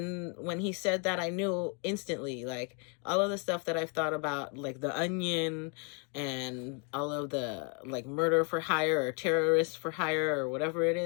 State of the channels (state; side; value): quieter; right; 37.5 dB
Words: he said that, I knew instantly, like, all of the stuff that I've thought about, like The Onion and all of the, like, murder for hire or terrorists for hire or whatever it